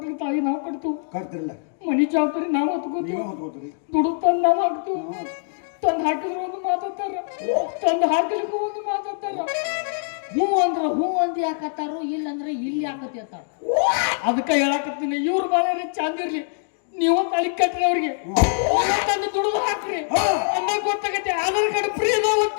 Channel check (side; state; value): right; silent; digital silence